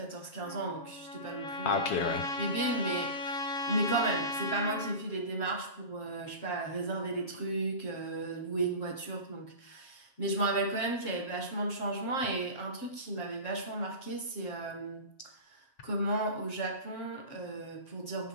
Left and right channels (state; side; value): late; right; 7.4 ms